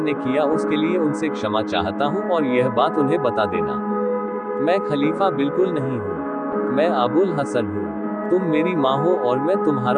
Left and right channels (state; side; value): identical; both; correlation 1.00